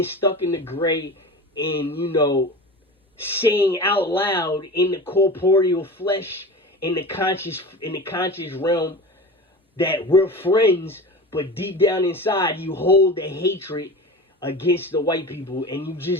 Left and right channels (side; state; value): both; normal; correlation 0.32